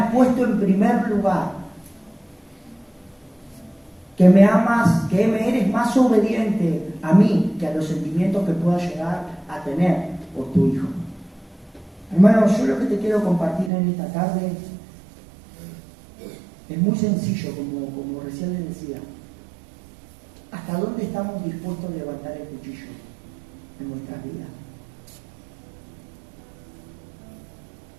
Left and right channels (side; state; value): left; drops out; at 13.7 s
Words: puesto en primer lugar, que me amas, que me eres más obediente a mí que a los sentimientos que pueda llegar a tener por tu hijo. Hermanos, yo lo que te quiero compartir en esta tarde es muy sencillo, como recién les decía. ¿Hasta dónde estamos dispuestos a levantar el cuchillo en nuestras vidas?